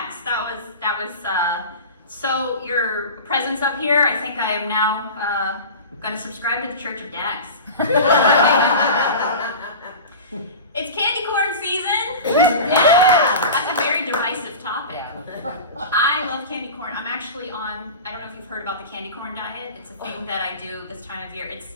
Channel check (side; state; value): both; inverted; correlation -0.32